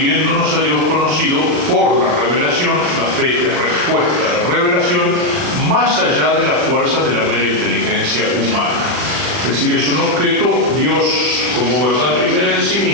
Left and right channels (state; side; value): late; left; 40 ms